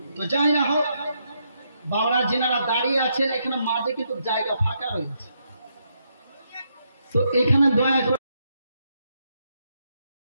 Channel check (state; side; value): inverted; both; correlation -0.79